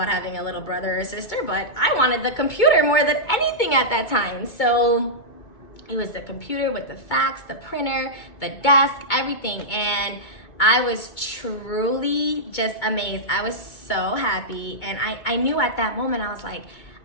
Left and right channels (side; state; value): right; late; 2.2 ms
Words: having a little brother or sister, but I wanted the computer more than anything at that time. So it was the computer with the fax, the printer, the desk, everything. And I was truly just amazed. I was so happy. And I knew at that moment, I was like,